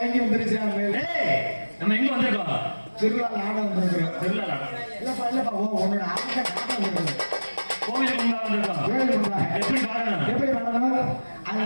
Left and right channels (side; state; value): both; inverted; correlation -1.00